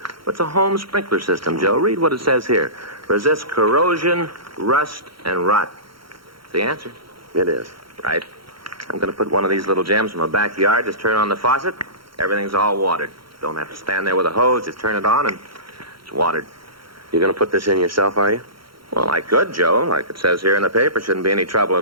It's a home sprinkler system, Joe. Read what it says here. Resists corrosion, rust, and rot. It's the answer. It is. Right. I'm going to put one of these little gems in my backyard. Just turn on the faucet. Everything's all watered. Don't have to stand there with a hose. Just turn it on and it's watered. You're going to put this in yourself, are you? Well, I could, Joe. Like it says here in the paper, shouldn't be any trouble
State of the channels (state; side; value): late; left; 0.74 ms